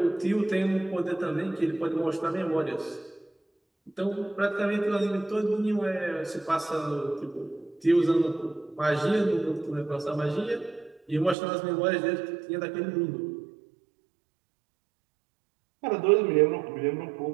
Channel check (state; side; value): drops out; left; at 11.4 s